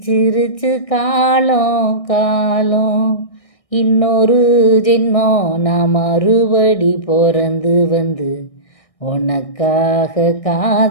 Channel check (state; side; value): late; right; 1.6 ms